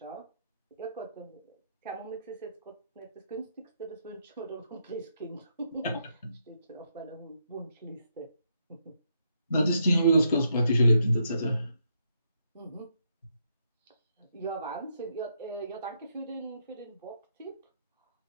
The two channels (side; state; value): both; inverted; correlation -0.77